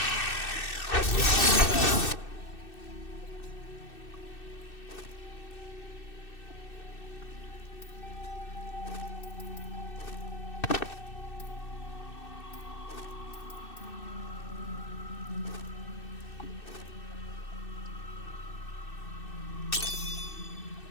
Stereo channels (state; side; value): late; right; 2.6 ms